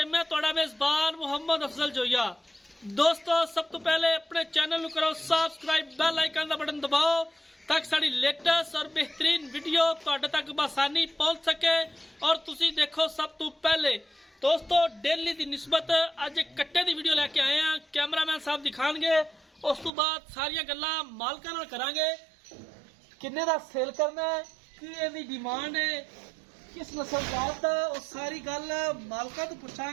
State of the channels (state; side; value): drops out; left; at 19.9 s